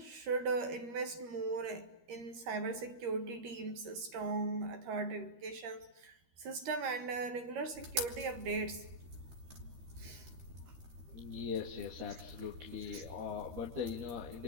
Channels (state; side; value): late; left; 13 ms